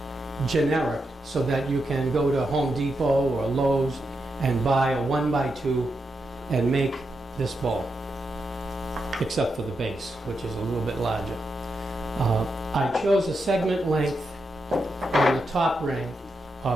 generic, so that you can go to Home Depot or Lowe's and buy a 1x2 and make this ball, except for the base, which is a little bit larger. I chose a segment length on the top ring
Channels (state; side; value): normal; both; correlation 0.85